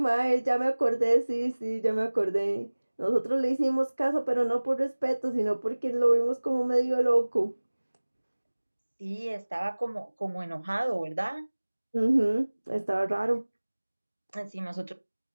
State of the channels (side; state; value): both; inverted; correlation -1.00